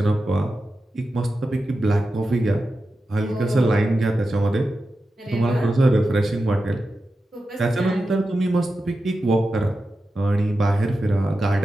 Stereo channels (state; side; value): normal; both; correlation 0.91